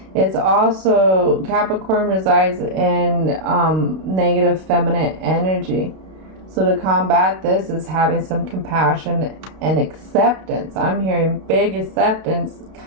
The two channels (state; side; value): late; left; 32 ms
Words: It's also, Capricorn resides in negative feminine energy. So to combat this is having some compassion and acceptance. I'm hearing big acceptance,